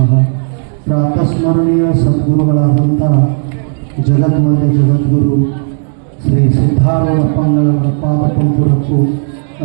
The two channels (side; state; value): left; silent; 69 dB below the other